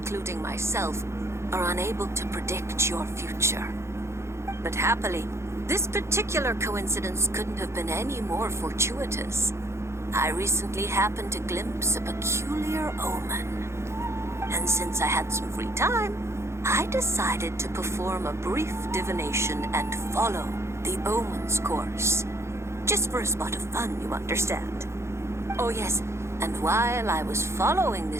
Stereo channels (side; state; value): left; late; 0.13 ms